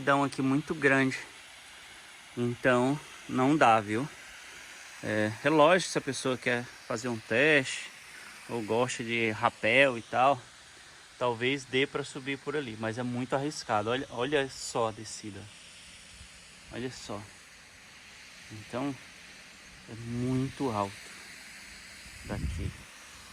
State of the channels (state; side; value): identical; both; correlation 1.00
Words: aqui muito grande. Então não dá, viu? É lógico, se a pessoa quer fazer um teste ou gosta de rapel e tal, talvez dê para subir por ali, mas é muito arriscado. Olha só a descida. Olha só. Então é muito alto daqui.